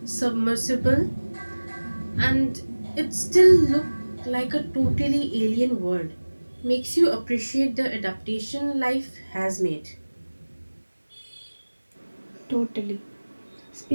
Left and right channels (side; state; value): both; inverted; correlation -1.00